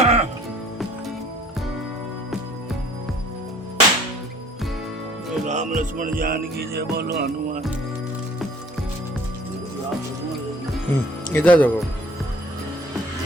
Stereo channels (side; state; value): both; normal; correlation 0.54